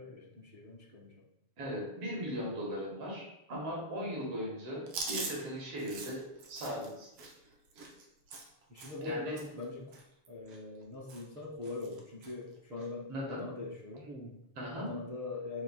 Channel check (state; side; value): late; left; 7.0 ms